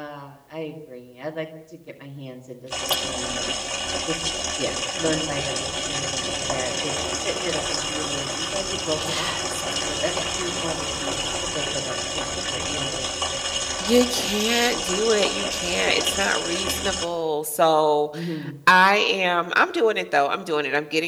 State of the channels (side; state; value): both; identical; correlation 1.00